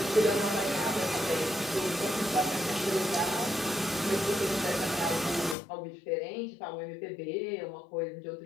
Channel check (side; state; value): right; drops out; at 5.6 s